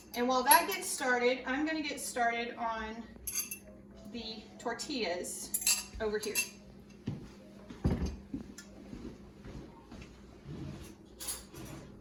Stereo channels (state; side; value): identical; both; correlation 1.00